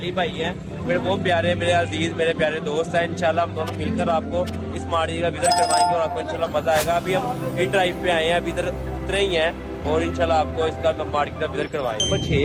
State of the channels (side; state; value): both; identical; correlation 1.00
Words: भाई हैं, मेरे बहुत प्यारे, मेरे अजीज, मेरे प्यारे दोस्त हैं। इंशाल्लाह हम दोनों मिलकर आपको इस मार्केट का विजिट करवाएंगे और आपको इंशाल्लाह मजा आएगा। अभी हम इन ड्राइव पे आए हैं, अभी इधर उतरे ही हैं और इंशाल्लाह आपको इसका मार्केट का विजिट करवाएंगे। नंबर